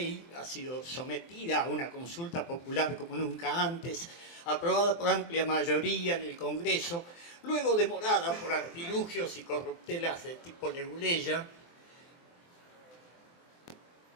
ha sido sometida a una consulta popular como nunca antes, aprobada por amplia mayoría en el Congreso, luego demorada por artilugios y corruptelas de tipo Leguleya.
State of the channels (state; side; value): late; right; 23 ms